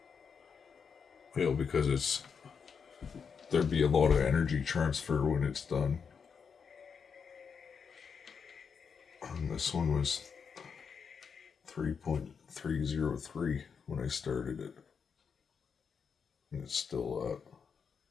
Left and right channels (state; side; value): quieter; right; 6.2 dB